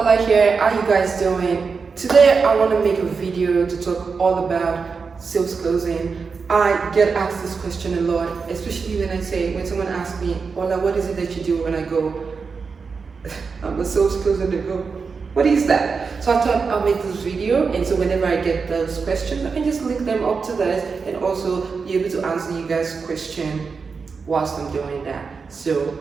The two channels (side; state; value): left; quieter; 5.1 dB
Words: here. How you guys doing? Today I want to make a video to talk all about sales closing. I get asked this question a lot, especially when someone asks me, Ola, what is it that you do? When I go, I'm a sales closer, they go, what is that? So I thought I'll make this video, and so whenever I get those questions, I can just link them up to this and also be able to answer you guys' question whilst I'm doing that. So,